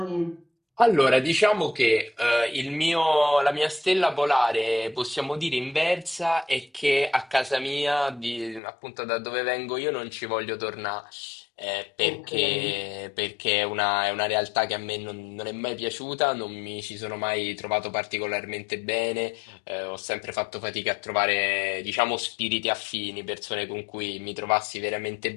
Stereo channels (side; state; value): right; drops out; at 8.6 s